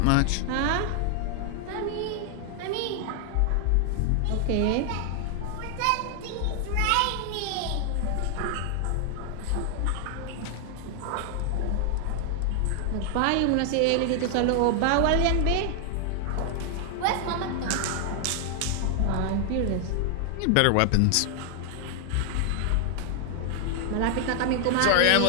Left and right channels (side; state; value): both; different; correlation 0.00